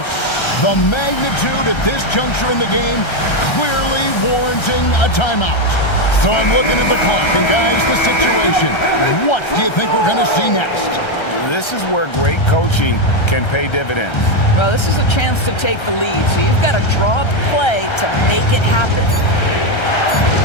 The magnitude at this juncture in the game clearly warranting a timeout. So I'm looking at the clock, and guys, the situation. What do you think we're going to see next? This is where great coaching can pay dividends. Well, this is a chance to take the lead, so you've got to draw up play to make it happen.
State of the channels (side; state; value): right; late; 1.3 ms